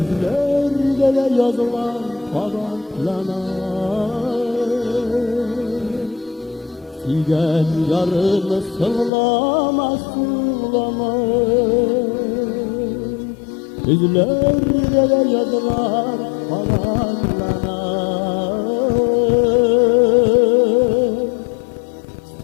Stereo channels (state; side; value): drops out; right; at 9.1 s